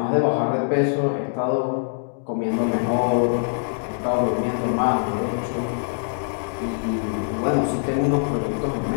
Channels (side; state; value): right; silent; digital silence